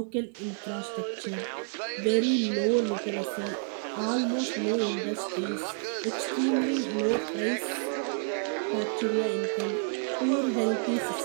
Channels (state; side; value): silent; left; digital silence